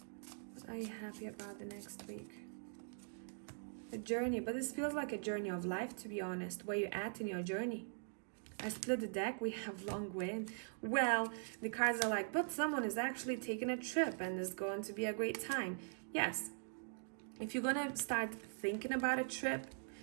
What are you happy about the next week? A journey, but this feels like a journey of life, to be honest. Where you at in your journey? I split the deck, we have long way. Well, the cards are like, but someone is actually taking a trip and it's going to be a great time. Yes, if you're gonna start thinking about a trip,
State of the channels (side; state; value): left; silent; digital silence